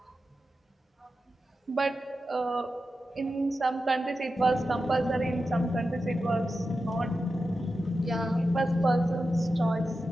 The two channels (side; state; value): both; normal; correlation 0.91